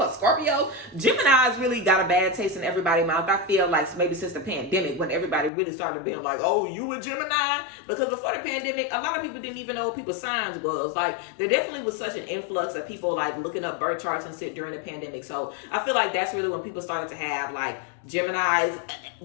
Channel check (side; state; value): right; drops out; at 5.5 s